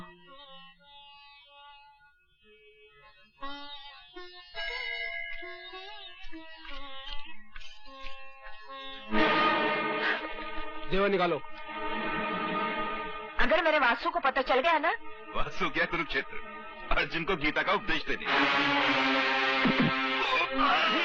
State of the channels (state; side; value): identical; both; correlation 1.00